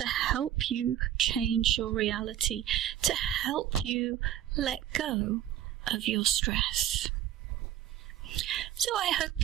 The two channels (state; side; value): quieter; left; 11.5 dB